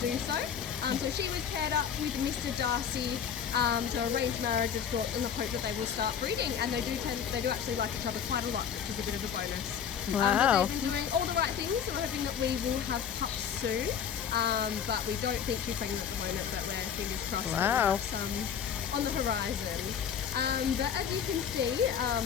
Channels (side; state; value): right; quieter; 8.0 dB